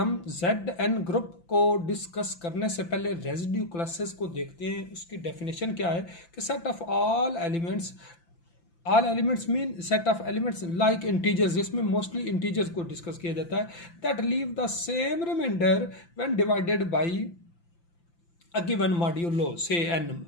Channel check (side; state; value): right; late; 5.9 ms